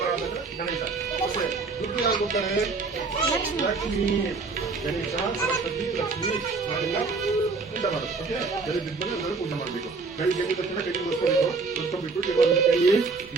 ಗಣೇಶ. ಬುದ್ಧಿ ಯಾರು ಕೊಡ್ತಾರೆ? ಲಕ್ಷ್ಮಿ. ಗಣೇಶ, ಸರಸ್ವತಿ, ಲಕ್ಷ್ಮಿ ನಾವೆಲ್ಲ ಪೂಜೆ ಮಾಡೋದು. ಓಕೆ, ಬೆಳೆ ಬಿದ್ದರೆ ಎಲ್ಲರೂ ಪೂಜೆ ಮಾಡಬೇಕು. ಬೆಳಿಗ್ಗೆ ಎದ್ದ ತಕ್ಷಣ ಕೈ ಮುಗಿಸ್ಕೊಬೇಕು. ಕೈ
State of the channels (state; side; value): quieter; left; 4.2 dB